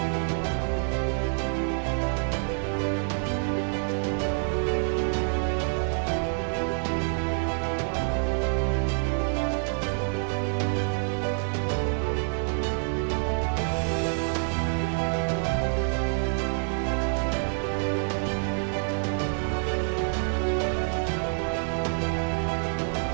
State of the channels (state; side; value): silent; left; 60 dB below the other